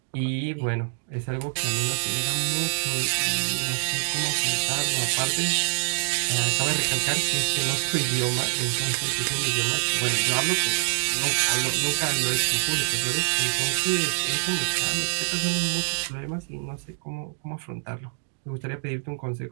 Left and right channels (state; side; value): silent; left; digital silence